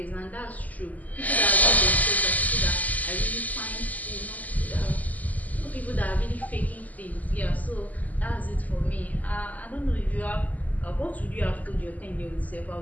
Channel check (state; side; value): late; right; 0.078 ms